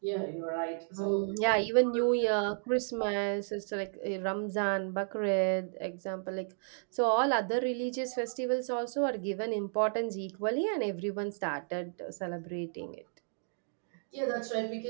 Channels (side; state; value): left; silent; digital silence